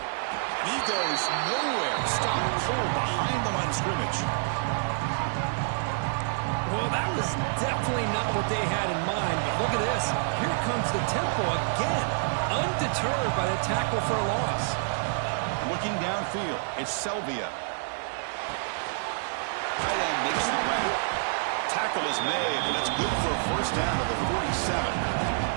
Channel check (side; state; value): left; silent; digital silence